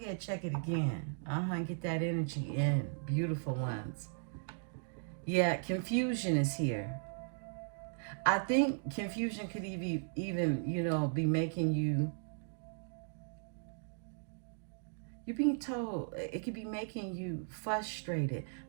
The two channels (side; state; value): left; silent; digital silence